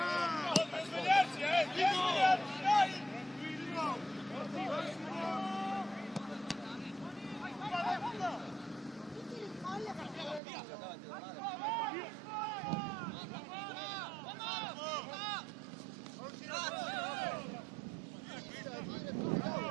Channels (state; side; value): drops out; left; at 10.4 s